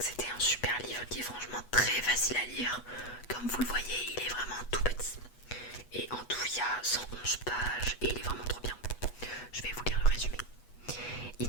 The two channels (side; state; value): right; late; 8.2 ms